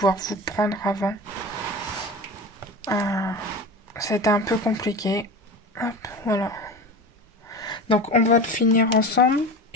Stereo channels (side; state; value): both; normal; correlation 0.31